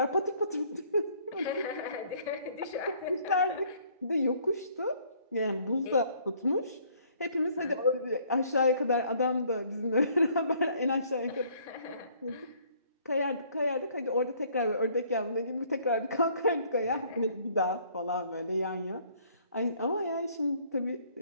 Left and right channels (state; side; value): inverted; both; correlation -0.61